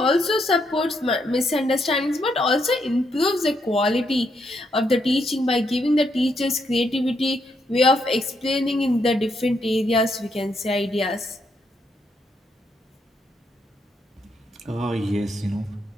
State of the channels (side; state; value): both; normal; correlation 0.77